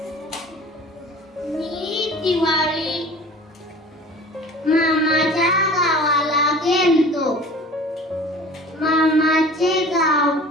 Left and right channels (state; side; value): normal; both; correlation 0.43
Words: मी दिवाळी मामाच्या गावाला गेलतो. मामाचे गाव